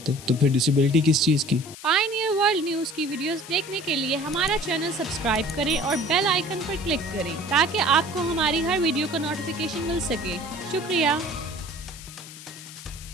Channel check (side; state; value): left; noise; hiss, 15 dB below the sound